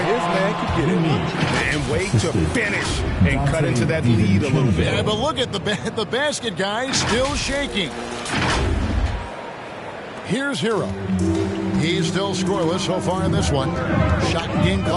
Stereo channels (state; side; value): identical; both; correlation 1.00